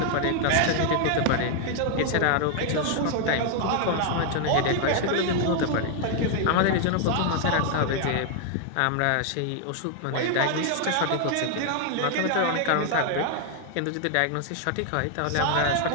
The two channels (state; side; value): different; both; correlation 0.00